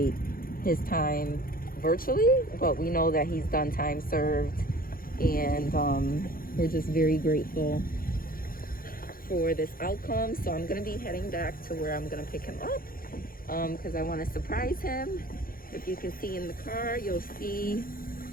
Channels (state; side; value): late; right; 0.42 ms